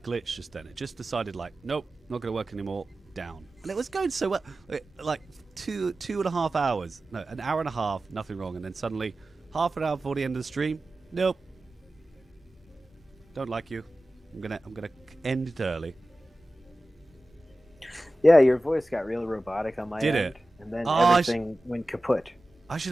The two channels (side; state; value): both; normal; correlation 0.95